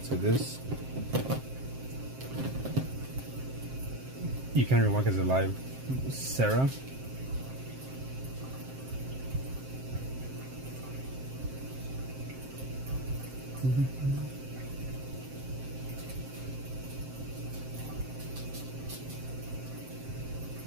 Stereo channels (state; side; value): late; left; 7.6 ms